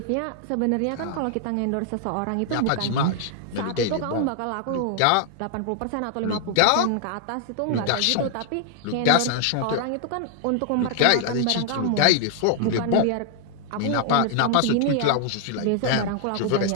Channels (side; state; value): both; different; correlation 0.00